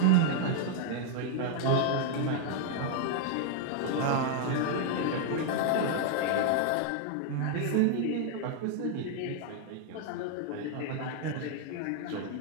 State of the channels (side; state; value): both; different; correlation 0.00